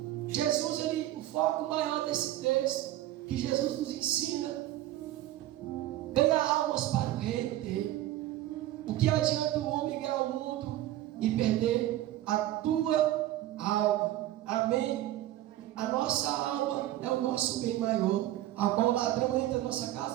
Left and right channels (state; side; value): quieter; left; 14.3 dB